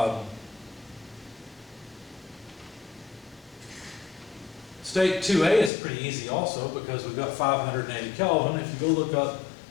State 2A is pretty easy also because we've got 580 Kelvin. If you go look up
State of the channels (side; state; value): right; drops out; at 5.7 s